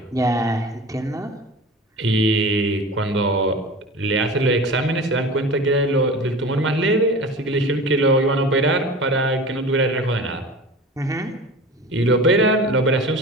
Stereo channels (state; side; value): normal; both; correlation 0.36